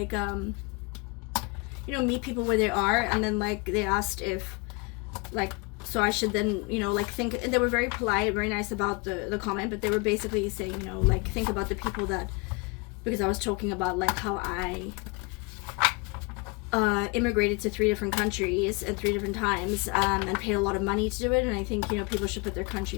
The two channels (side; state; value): right; quieter; 28.6 dB